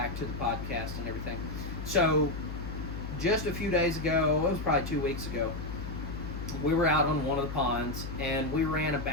podcast and everything. So, just a few days ago, it was probably 2 weeks ago, we were out on one of the ponds, and we ran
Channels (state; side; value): noise; left; hum, 7 dB below the sound